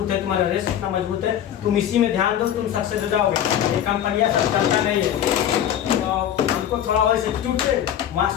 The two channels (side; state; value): right; quieter; 10.4 dB